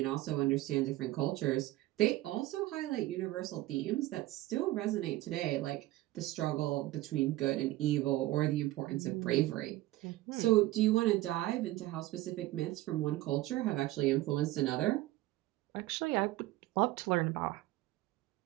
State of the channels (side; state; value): left; quieter; 17.0 dB